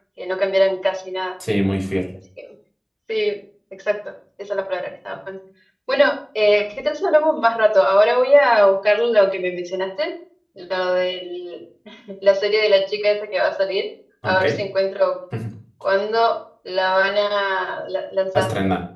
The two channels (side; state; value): both; identical; correlation 1.00